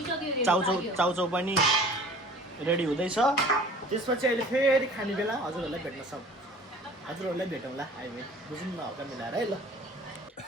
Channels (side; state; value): both; normal; correlation 0.46